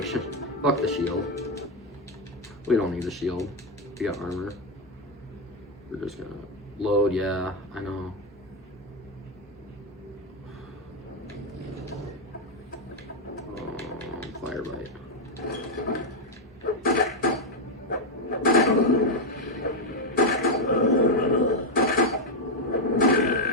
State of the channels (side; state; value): both; normal; correlation 0.03